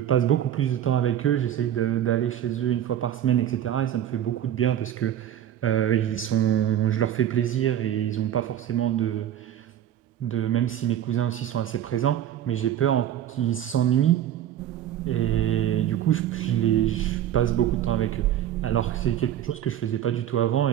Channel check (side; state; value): left; quieter; 11.1 dB